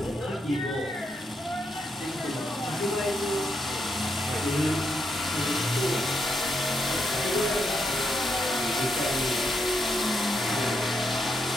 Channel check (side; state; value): both; normal; correlation 0.80